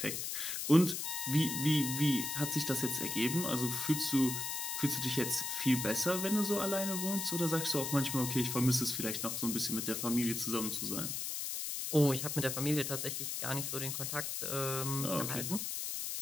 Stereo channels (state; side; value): noise; left; hiss, 3 dB below the sound